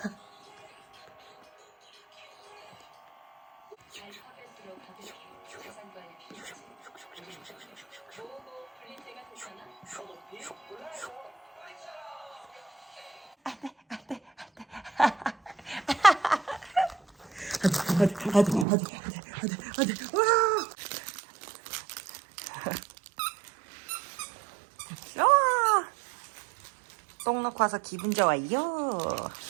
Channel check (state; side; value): drops out; left; at 18.7 s